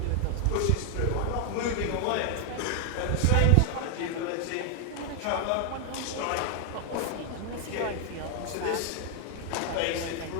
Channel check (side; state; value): both; different; correlation 0.00